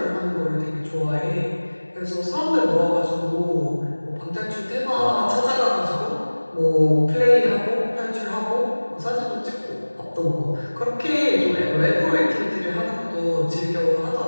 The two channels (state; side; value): inverted; both; correlation -1.00